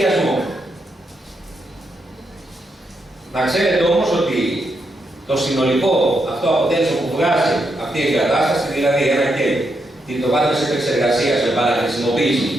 Να ξέρετε όμως ότι το συνολικό αυτό αποτέλεσμα που βγάζει αυτή η εγκατάσταση, δηλαδή ένα κέλ, το βάθος επεξεργασίας με παραχρησιμοποίηση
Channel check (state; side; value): normal; both; correlation 0.81